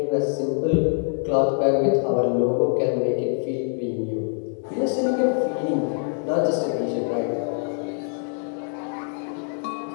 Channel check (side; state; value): right; silent; 56 dB below the other